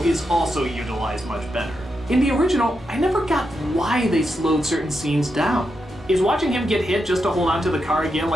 is also utilized much better. In the original, I never got why they slowed certain scenes down. Is watching him get hit just to hold onto the car again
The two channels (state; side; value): normal; both; correlation 0.85